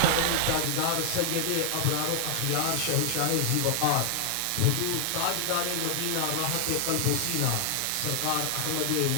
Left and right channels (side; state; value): both; different; correlation 0.00